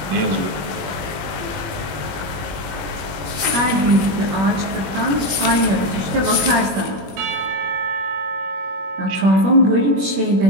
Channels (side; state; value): left; late; 21 ms